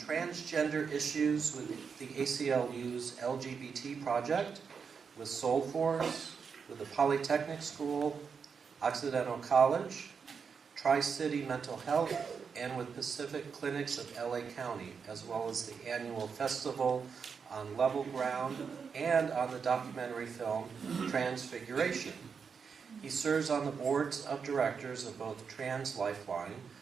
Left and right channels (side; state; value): left; quieter; 6.0 dB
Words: issues with the ACLU's LGBT project, with Soul Force, with the Polytechnic School, Occidental College, Tri-City Mental Health, and with Pacific Clinics of LA County, as well as the annual festival on Level Ground and on the documentary film Transfiguration. He serves on the boards of directors of both Trans Lifeline,